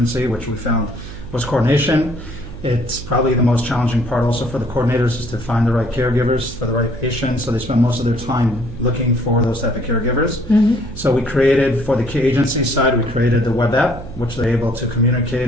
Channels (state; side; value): noise; right; hum, 12 dB below the sound